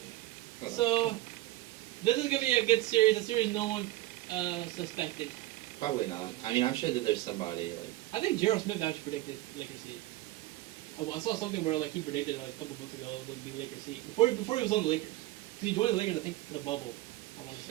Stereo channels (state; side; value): quieter; left; 17.4 dB